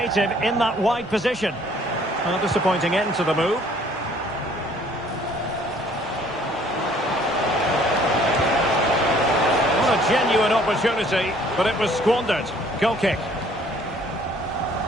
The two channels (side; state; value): both; normal; correlation 0.58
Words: in that wide position. A disappointing end to the move. What a genuine opportunity, but it was squandered. Goal kick.